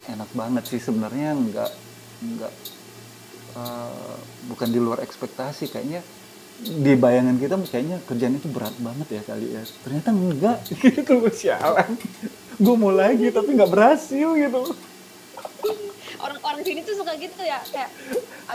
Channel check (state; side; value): identical; both; correlation 1.00